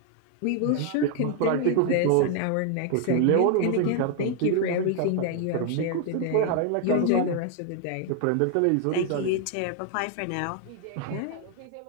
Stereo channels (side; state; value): both; different; correlation 0.00